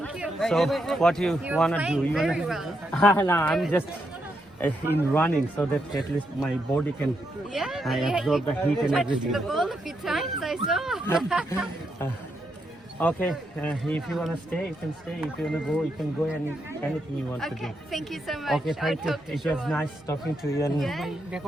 you. So what you wanna playing do? You very wanna? well. No, I'm just in running so that at least my body can Yeah, I absorb the heat and touched everything. the ball a few times, I saw. Okay, if you wanna stay, you can stay. If you wanna go, you can go. Anything you want to do. Okay, thank you so much. Okay, thank I'll you. talk to It you was nice talking to you. And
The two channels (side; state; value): both; normal; correlation 0.81